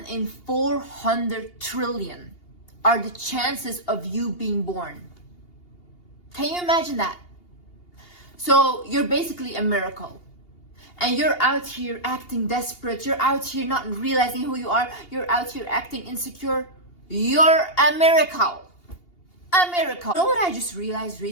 in 400 trillion are the chances of you being born. Can you imagine that? So you're basically a miracle. And you're out here acting desperate. You're out here not realizing who you are. You're out here acting insecure. You're a miracle. A miracle. You know what I just realized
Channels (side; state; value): right; late; 2.8 ms